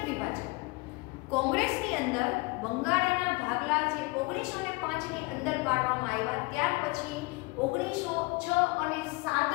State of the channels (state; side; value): quieter; right; 26.1 dB